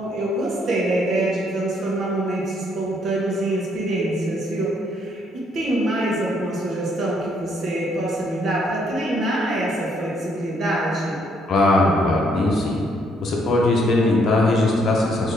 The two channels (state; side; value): normal; both; correlation 0.70